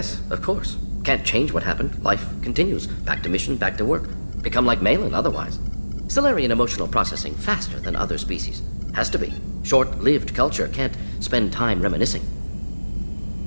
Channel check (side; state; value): both; inverted; correlation -1.00